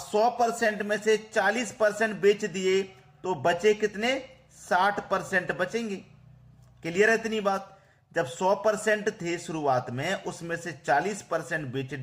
में से 40% बेच दिए तो बचे कितने? 60% बचेंगे। क्लियर है इतनी बात? जब 100% थे शुरुआत में, उसमें से 40% बेच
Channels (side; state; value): both; identical; correlation 1.00